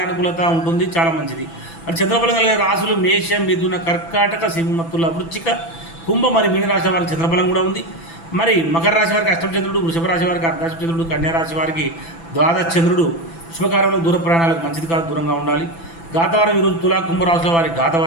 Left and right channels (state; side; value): late; right; 6.0 ms